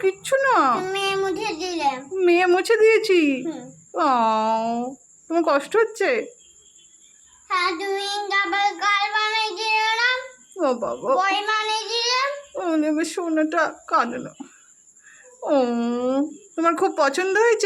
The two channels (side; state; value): both; identical; correlation 1.00